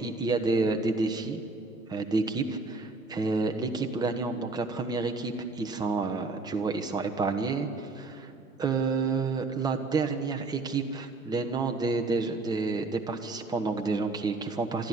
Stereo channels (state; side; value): quieter; left; 3.4 dB